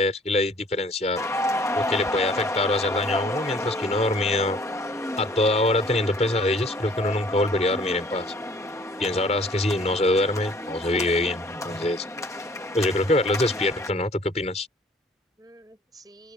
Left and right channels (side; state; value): both; normal; correlation 0.55